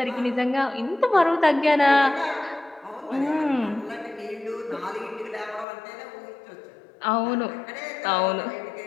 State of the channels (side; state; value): right; drops out; at 5.7 s